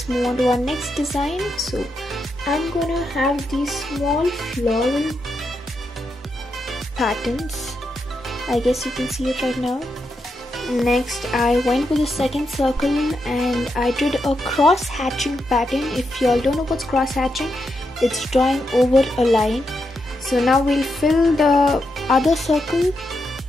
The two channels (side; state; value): both; normal; correlation 0.84